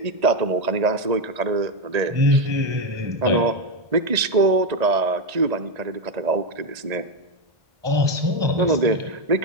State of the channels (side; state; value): left; late; 1.8 ms